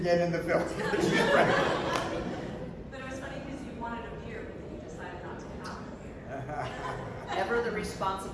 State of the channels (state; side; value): identical; both; correlation 1.00